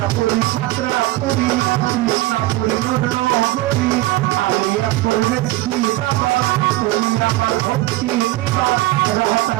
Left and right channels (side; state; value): left; quieter; 17.8 dB